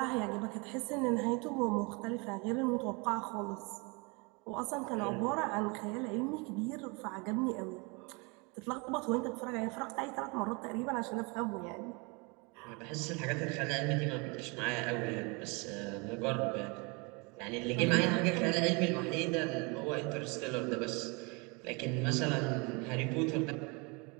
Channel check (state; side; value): quieter; left; 29.7 dB